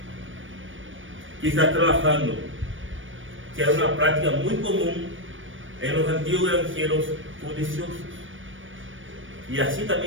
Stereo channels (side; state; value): left; late; 0.57 ms